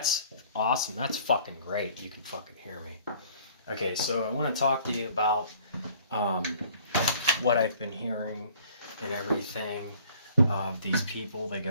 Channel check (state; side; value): inverted; both; correlation -0.54